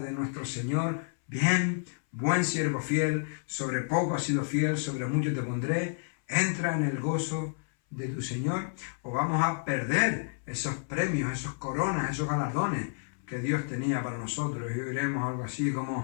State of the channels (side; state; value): right; silent; 58 dB below the other